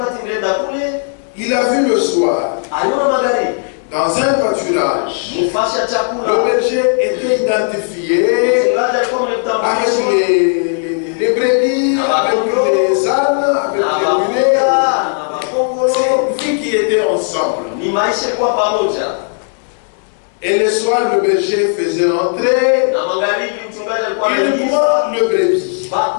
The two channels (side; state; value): right; silent; 69 dB below the other